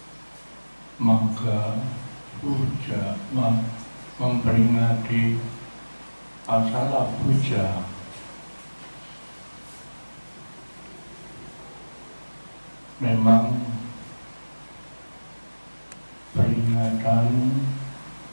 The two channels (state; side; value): inverted; both; correlation -1.00